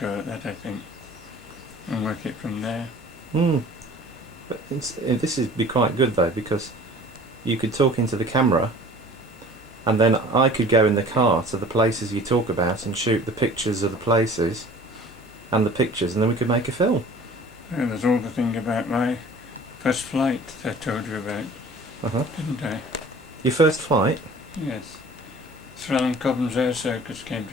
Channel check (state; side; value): normal; both; correlation 0.46